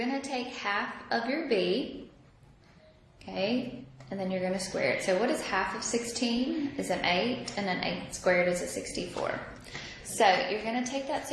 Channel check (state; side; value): identical; both; correlation 1.00